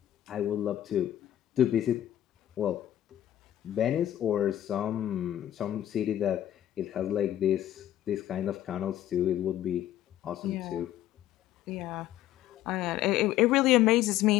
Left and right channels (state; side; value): quieter; right; 12.5 dB